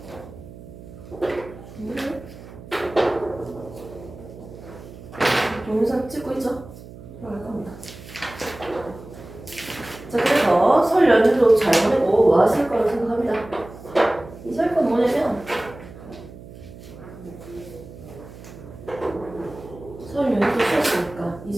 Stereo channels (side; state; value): right; noise; hum, 16 dB below the sound